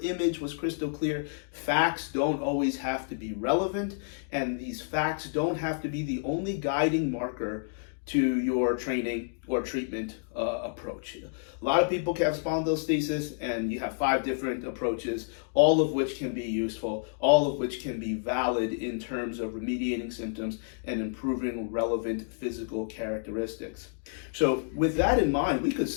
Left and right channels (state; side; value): silent; right; digital silence